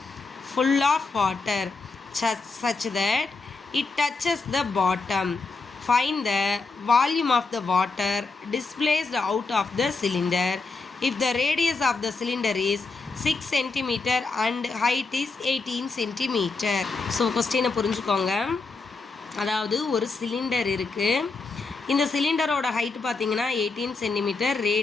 full of water such that it touches the bottom. Find the volume of the water displaced out of the cylinder if the radius of the cylinder is 6 cm and height is 18 cm. So question புரிஞ்சுக்கோங்க. அதாவது ஒரு சிலிண்டர் இருக்கு. இந்த சிலிண்டரோட ஹைட் பார்த்தீங்கன்னா 18 cm,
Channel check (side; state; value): right; quieter; 4.0 dB